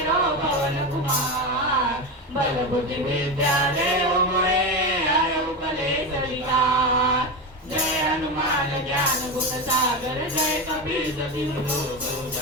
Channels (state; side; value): normal; both; correlation 0.18